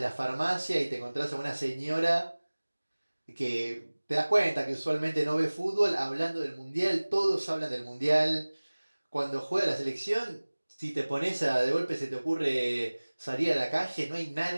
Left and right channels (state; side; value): inverted; both; correlation -1.00